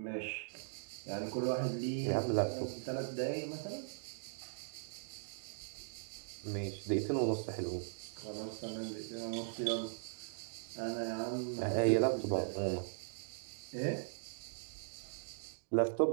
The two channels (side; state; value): left; silent; digital silence